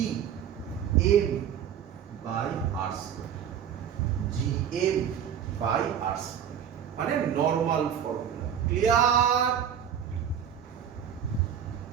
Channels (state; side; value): quieter; left; 8.9 dB